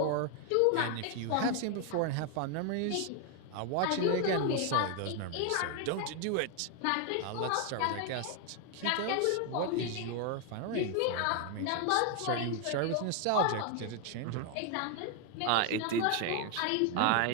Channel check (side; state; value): both; different; correlation 0.01